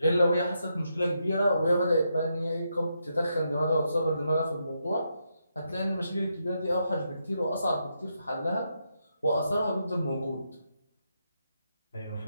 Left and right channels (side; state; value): both; inverted; correlation -0.81